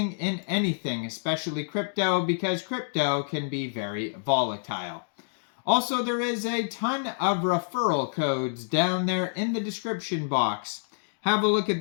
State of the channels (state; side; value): silent; right; digital silence